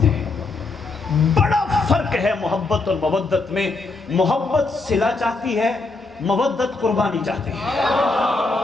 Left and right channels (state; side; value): quieter; right; 3.6 dB